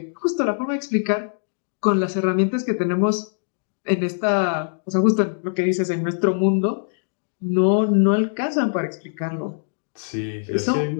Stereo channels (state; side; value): silent; right; digital silence